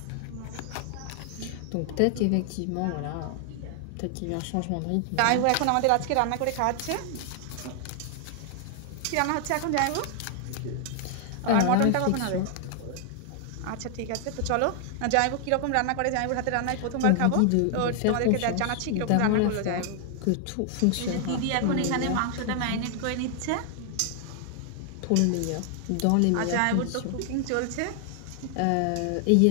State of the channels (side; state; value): both; different; correlation 0.00